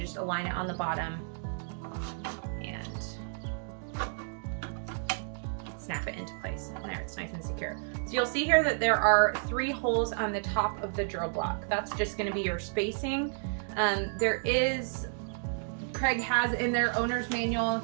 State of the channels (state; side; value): silent; left; digital silence